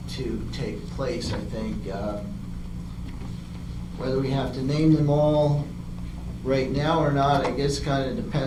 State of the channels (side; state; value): both; identical; correlation 1.00